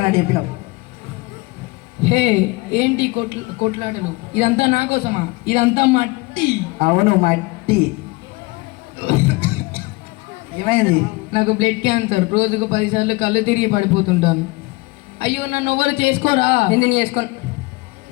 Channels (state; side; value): quieter; right; 23.9 dB